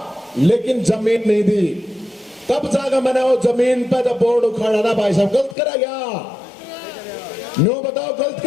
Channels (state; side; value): drops out; right; at 5.6 s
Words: लेकिन जमीन नहीं दी। तब जाकर मैंने वो जमीन पे जब बोर्ड उखाड़ा था, भाई साहब गलत करा गया। नो बताओ गलत